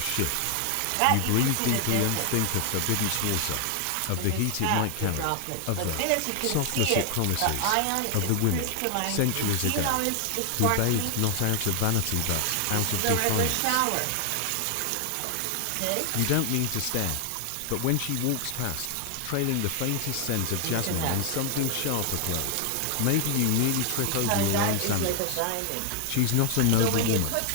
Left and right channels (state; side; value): different; both; correlation 0.00